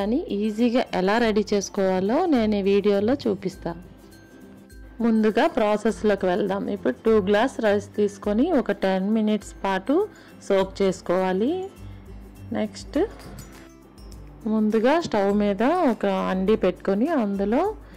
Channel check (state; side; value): identical; both; correlation 1.00